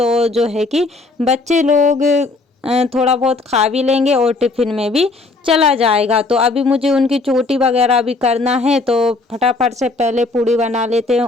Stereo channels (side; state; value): right; quieter; 3.4 dB